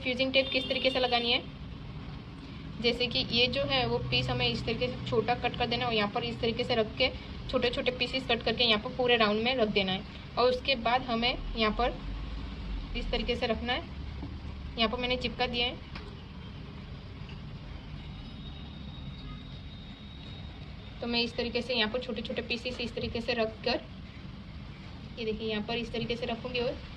फ्यूजिंग टेप किस तरीके से लगानी है, जैसे कि ये जो है वो पीस हमें इस तरीके से छोटा कट कर देना है और यहाँ पर इस तरीके से रख के छोटे छोटे पीसेस कट करके यहाँ पर पूरे राउंड में रख देना है। और उसके बाद हमें यहाँ पर इस तरीके से रखना है। यहाँ पर मैंने चिपका दिया है। तो मैं इस तरीके से यहाँ पर छोटे छोटे पीसेस इस तरीके से रख कर, ये देखिए यहाँ पर इस तरीके से रखूँगी और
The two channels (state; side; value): identical; both; correlation 1.00